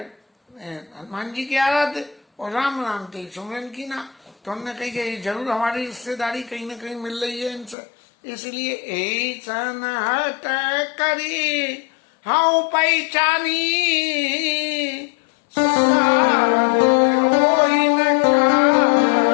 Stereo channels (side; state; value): right; drops out; at 7.8 s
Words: हनुमान जी की आराध्य और राम नाम ते सुमरन की ना, तो हमने कही कि जरूर हमारी रिश्तेदारी कहीं ना कहीं मिल रही है इनसे, इसलिए यही सनहत करी हाँ पहचानी